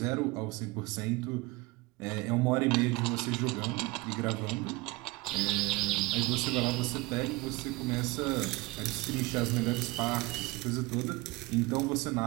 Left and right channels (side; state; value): left; quieter; 22.2 dB